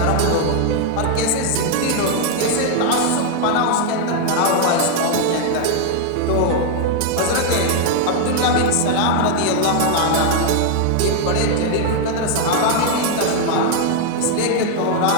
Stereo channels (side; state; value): both; different; correlation 0.00